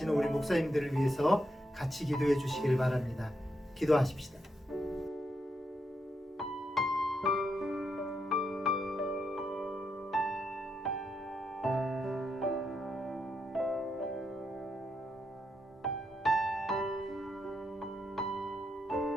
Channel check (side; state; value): both; normal; correlation 0.81